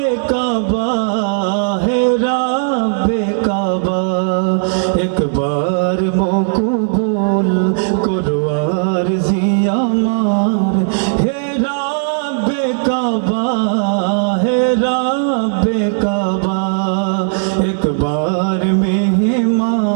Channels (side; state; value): left; silent; digital silence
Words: কাবা, হে রাব্বে কাবা, একবার মকবুল করো আরজি আমার। হে রাব্বে কাবা, হে রাব্বে কাবা, একবার